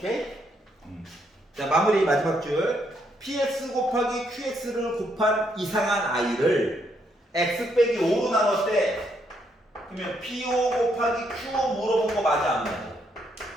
마무리 마지막 줄. px 곱하기 qx를 곱한 이상한 i를 x 빼기 5로 나눴대. 그러면 p5 곱하기 q5 물어본 거 맞아 안 맞아?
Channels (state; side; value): normal; both; correlation 0.75